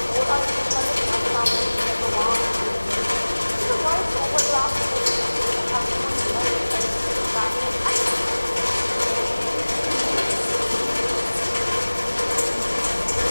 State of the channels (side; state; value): both; inverted; correlation -1.00